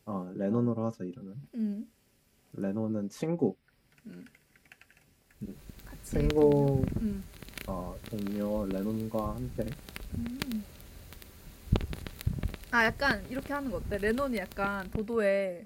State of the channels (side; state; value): both; identical; correlation 1.00